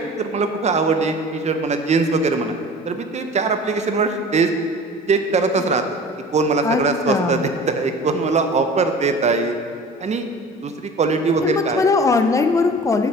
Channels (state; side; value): normal; both; correlation 0.41